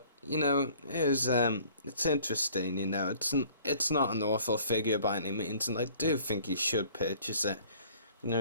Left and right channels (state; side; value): inverted; both; correlation -0.53